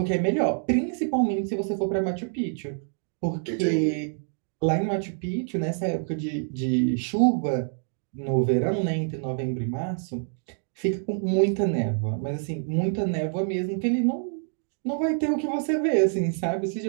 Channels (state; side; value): silent; left; 61 dB below the other